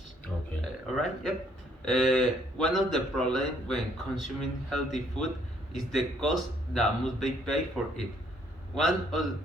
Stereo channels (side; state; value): both; normal; correlation 0.66